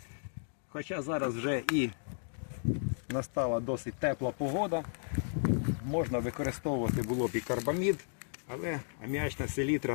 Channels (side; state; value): right; silent; digital silence